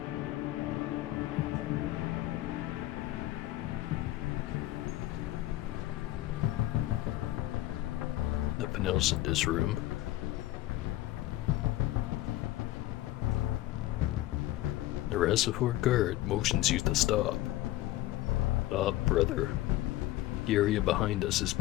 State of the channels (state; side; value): quieter; right; 15.7 dB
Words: nothing else in this room. The reservoir guard motions you to stop. Stop, brother. The area behind us is